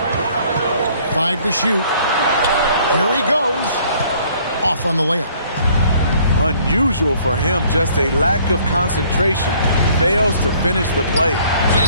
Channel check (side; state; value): both; inverted; correlation -0.59